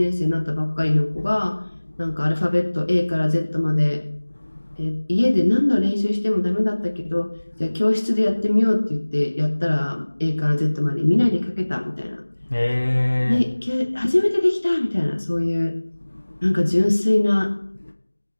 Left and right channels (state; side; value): inverted; both; correlation -1.00